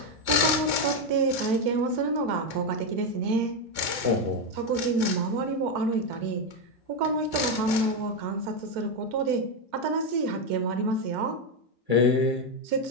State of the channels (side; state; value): left; late; 2.3 ms